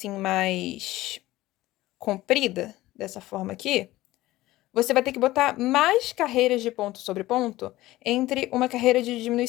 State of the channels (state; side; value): quieter; right; 17.1 dB